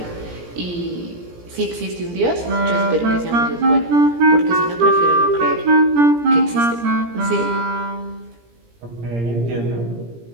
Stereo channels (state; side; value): late; left; 17 ms